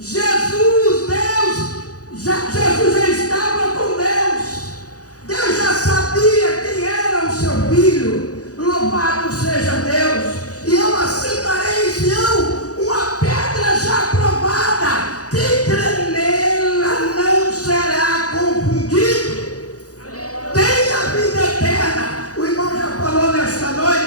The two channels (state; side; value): late; right; 0.67 ms